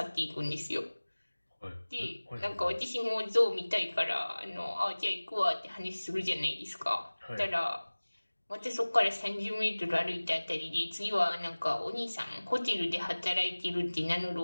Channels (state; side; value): inverted; both; correlation -1.00